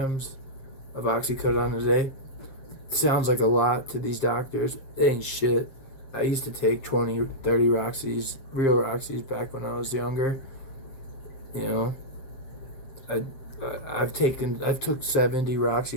of oxycodone a day. Sounds like a lot to these doctors. It ain't shit. I used to take 20, 30 Roxys, real Roxys, back when I was younger. I've took 70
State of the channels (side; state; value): right; late; 7.6 ms